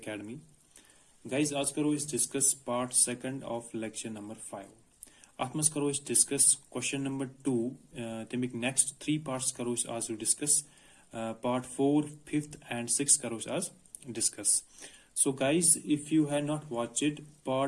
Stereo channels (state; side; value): identical; both; correlation 1.00